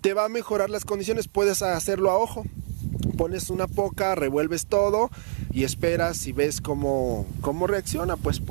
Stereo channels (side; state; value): left; silent; 61 dB below the other